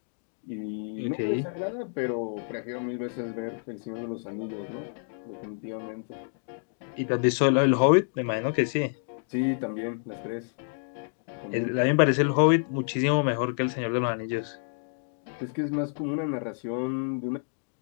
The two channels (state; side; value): silent; right; digital silence